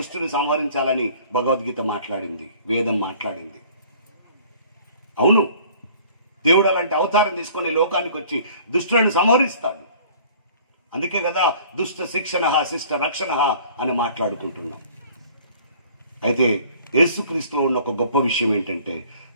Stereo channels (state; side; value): inverted; both; correlation -0.51